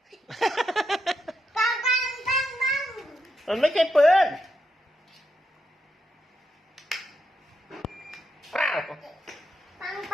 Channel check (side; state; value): both; normal; correlation 0.83